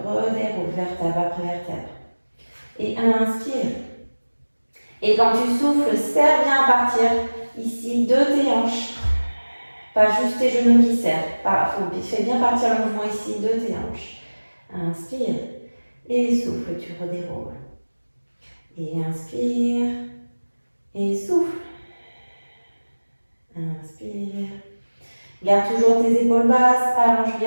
redéroule vertèbre après vertèbre. Et inspire. Et quand tu souffles, serre bien à partir ici de tes hanches. Pas juste tes genoux qui serrent. Fais bien partir le mouvement ici de tes hanches. Inspire. Et souffle, tu redéroules. Et inspire. Et souffle. Inspire. Garde toujours tes épaules basses. Allonge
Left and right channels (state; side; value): inverted; both; correlation -1.00